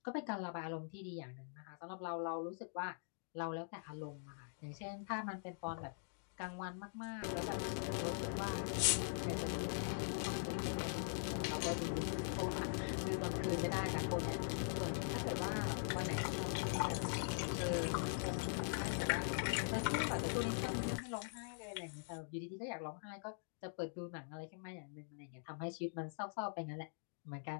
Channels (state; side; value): silent; right; digital silence